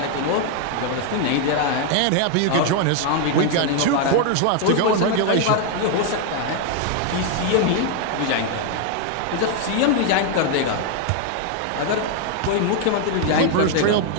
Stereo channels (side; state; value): both; different; correlation 0.00